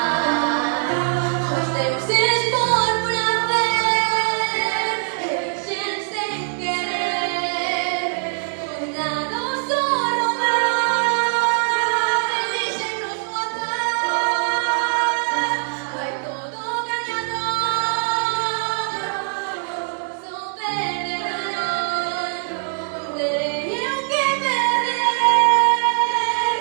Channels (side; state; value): left; silent; digital silence